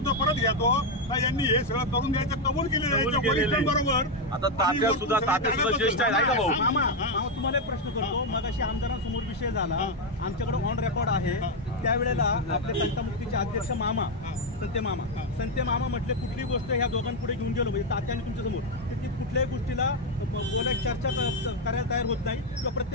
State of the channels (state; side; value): normal; both; correlation 0.04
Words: परत घेतो का यांनी हे सगळं करून द्यायचं कबूल केलेलं बरोबर. आता तात्या सुद्धा ज्येष्ठ आहे का भाऊ? मामा तुम्हाला एक प्रश्न करतो. मग अशी आमदारांसमोर विषय झाला, आमच्याकडे ऑन रेकॉर्ड आहे, त्यावेळेला आपले तंटामुक्तीचे अध्यक्ष मामा संते मामा म्हटले कुठली गोष्ट ह्या दोघांपुढे घेऊन गेलो म्हणजे तात्याने तुमच्या समोर ती कुठल्याही गोष्टीला बोलायची चर्चा करायला तयार होत नाही किंवा